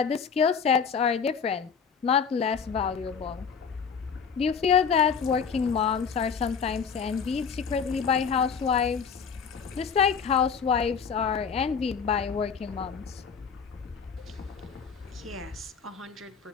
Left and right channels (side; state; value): right; quieter; 6.3 dB